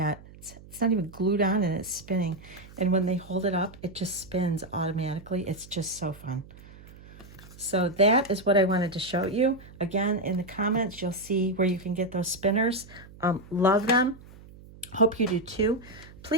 It's not even glued on and it's spinning. And when they hold it up, it just spins automatically. It's just so fun. So that is what I wanted to show you. Again, in the comments, you'll see where you can get those spinners. Love them. Hope you do too.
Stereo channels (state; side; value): noise; right; hum, 20 dB below the sound